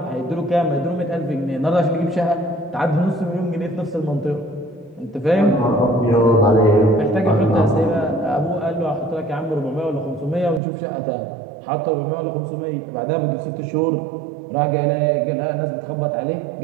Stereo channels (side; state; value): left; drops out; at 10.6 s